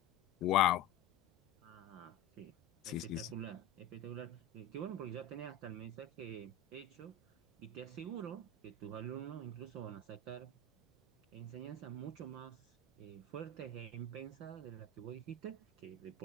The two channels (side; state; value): right; quieter; 5.3 dB